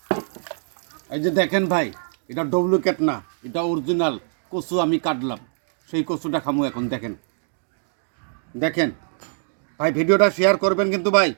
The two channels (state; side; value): silent; left; digital silence